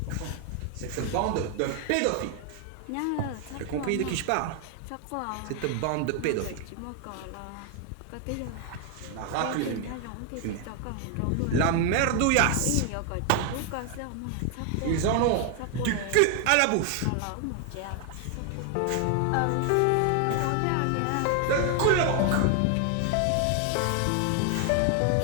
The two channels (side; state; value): both; different; correlation 0.00